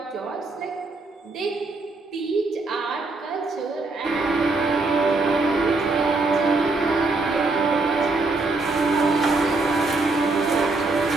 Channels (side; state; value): left; quieter; 3.4 dB